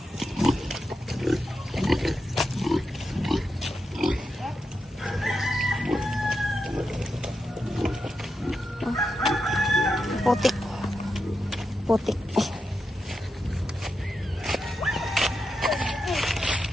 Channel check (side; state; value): both; normal; correlation 0.87